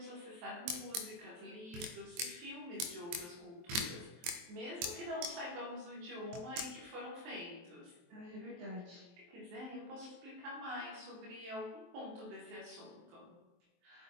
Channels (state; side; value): late; left; 23 ms